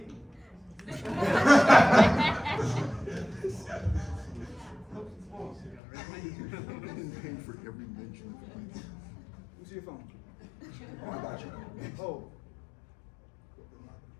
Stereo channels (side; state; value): right; drops out; at 5.8 s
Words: For every mention. Who's your phone? Oh, I got you. Oh.